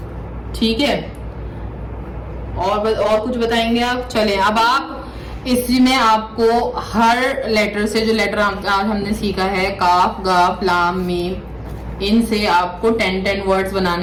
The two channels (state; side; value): identical; both; correlation 1.00